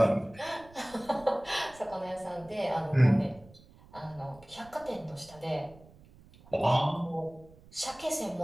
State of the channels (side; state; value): right; noise; rumble, 24 dB below the sound